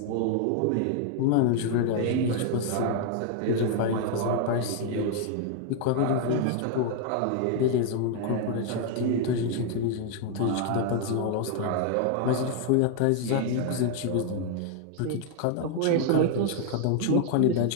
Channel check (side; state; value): both; different; correlation 0.00